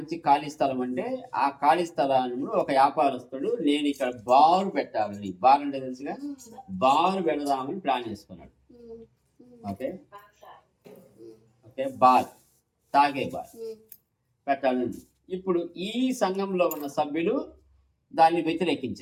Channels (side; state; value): both; identical; correlation 1.00